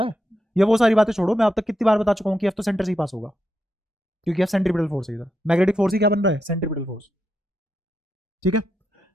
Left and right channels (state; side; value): normal; both; correlation 0.84